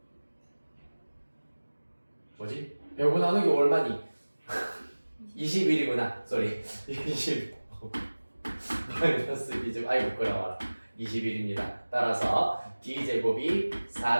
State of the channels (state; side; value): inverted; both; correlation -1.00